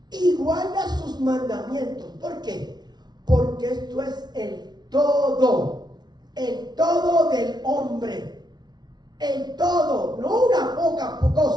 Y guarda sus mandamientos. ¿Por qué? Porque esto es el todo del hombre. El todo, no una poca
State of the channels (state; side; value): late; left; 0.20 ms